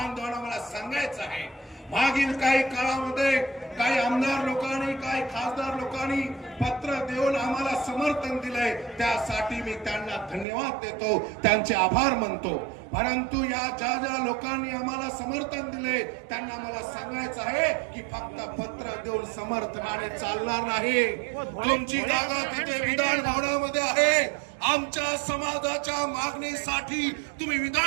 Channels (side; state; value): left; drops out; at 10.5 s